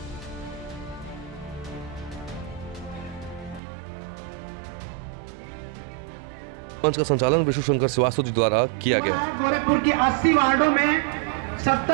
मंच का संचालन विष्णु शंकर श्रीवास्तव जी द्वारा किया गया। गोरखपुर के 80 वार्डों में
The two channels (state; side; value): drops out; left; at 3.6 s